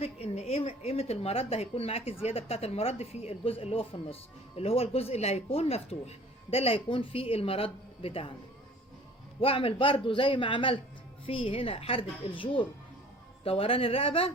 ان قيمة المرد هيكون معاكي الزيادة بتاعت المرد في الجزء اللي هو في النص، اللي هو الجزء اللي هيكون مفتوح، ده اللي هيكون فيه المرد بتاعنا. واعمل برضو زي ما عملت في هنا حردة الجور دوران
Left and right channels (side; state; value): both; normal; correlation 0.49